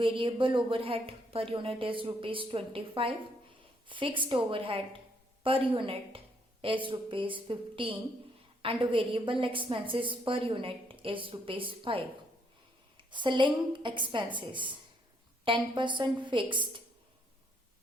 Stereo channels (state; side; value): normal; both; correlation 0.71